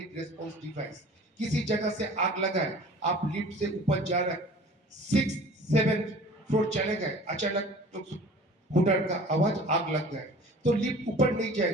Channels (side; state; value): both; normal; correlation 0.45